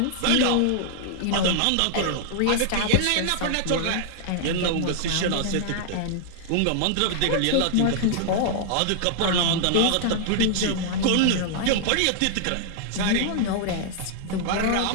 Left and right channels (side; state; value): both; different; correlation -0.01